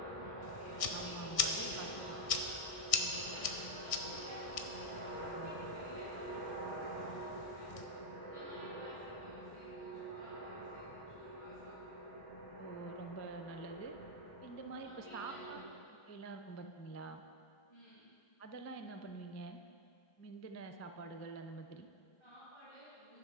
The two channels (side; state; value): right; late; 1.6 ms